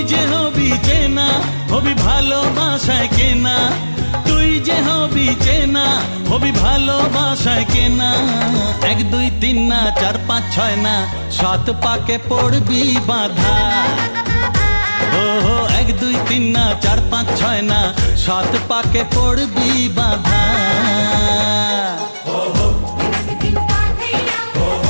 যে হবি চেনা, হবি ভালোবাসায় কেনা। তুই যে হবি চেনা, হবি ভালোবাসায় কেনা। 1 2 3 না 4 5 6 না 7 পাকে পড়বি বাঁধা। ও 1 2 3 না 4 5 6 না 7 পাকে পড়বি বাঁধা।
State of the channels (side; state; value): both; inverted; correlation -1.00